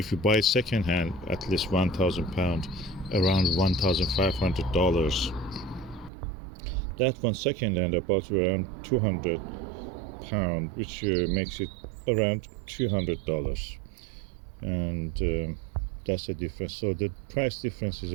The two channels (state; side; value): drops out; left; at 6.1 s